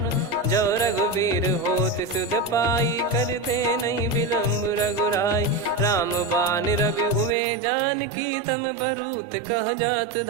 जो रघुवीर होत सुध पाई, करते नहीं विलम्ब रघुराई। राम बान रवि हुए जानकी, तम बरूत कह जात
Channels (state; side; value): drops out; left; at 7.4 s